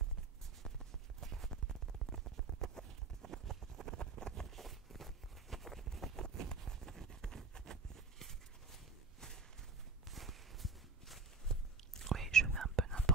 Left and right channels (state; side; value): quieter; left; 4.1 dB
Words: Oui, je fais un peu